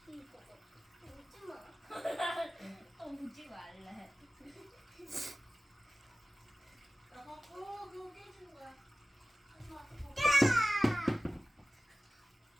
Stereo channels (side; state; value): both; normal; correlation 0.96